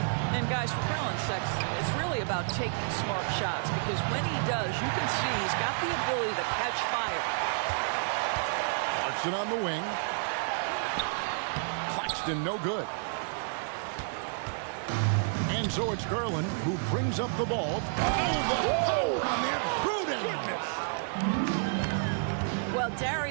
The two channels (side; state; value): left; silent; digital silence